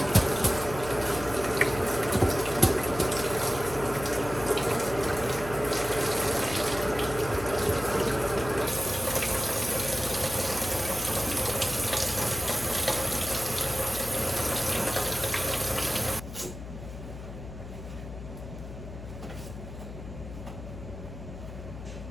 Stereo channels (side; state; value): left; noise; hum, 11 dB below the sound